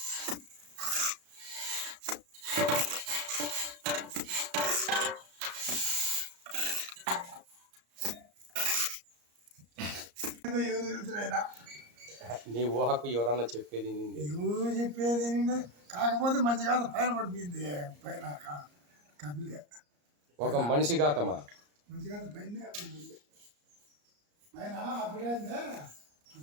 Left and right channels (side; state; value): left; late; 34 ms